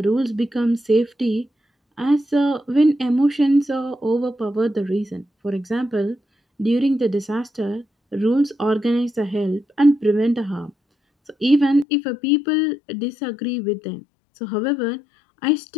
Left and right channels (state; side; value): drops out; right; at 11.9 s